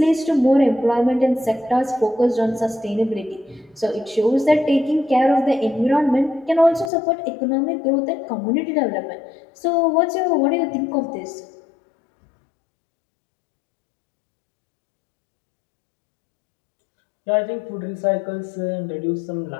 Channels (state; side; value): drops out; right; at 6.9 s